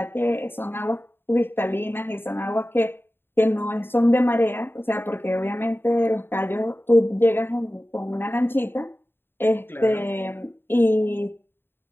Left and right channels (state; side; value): late; right; 0.10 ms